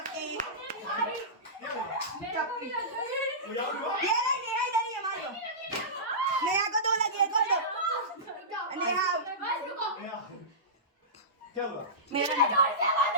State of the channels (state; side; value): normal; both; correlation -0.20